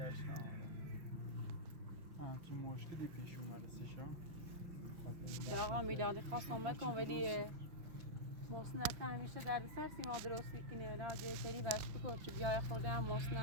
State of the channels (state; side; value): late; left; 5.8 ms